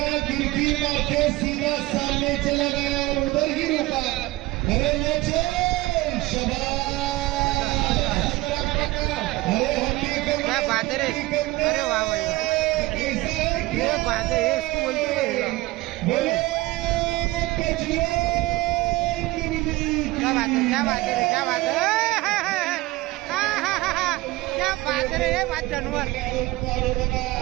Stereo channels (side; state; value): left; quieter; 19.3 dB